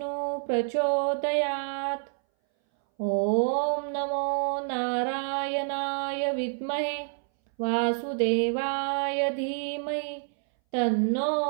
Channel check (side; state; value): left; silent; 59 dB below the other